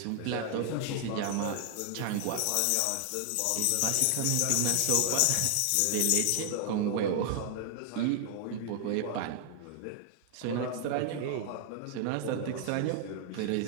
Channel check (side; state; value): both; different; correlation 0.00